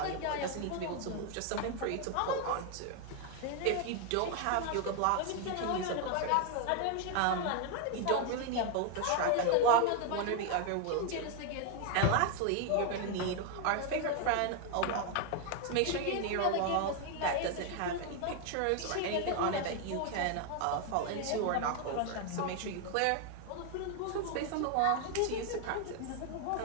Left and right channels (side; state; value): both; different; correlation 0.01